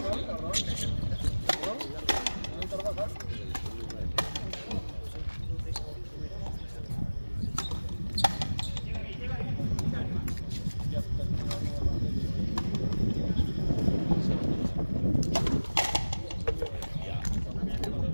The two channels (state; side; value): inverted; both; correlation -1.00